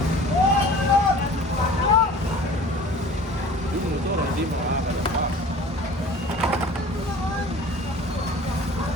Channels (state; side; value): normal; both; correlation 0.44